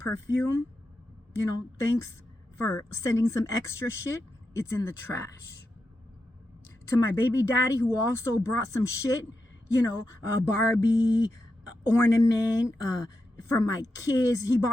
thanks for sending some extra shit, it's in the trash. To my baby daddy, who also brought some shit, a Barbie ornament for my kids. He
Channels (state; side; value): normal; both; correlation 0.87